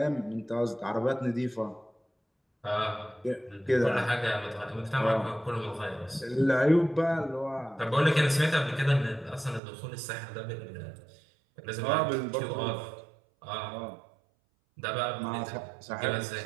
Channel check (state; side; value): drops out; left; at 9.6 s